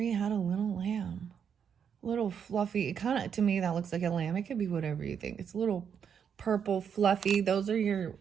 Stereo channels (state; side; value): quieter; left; 7.5 dB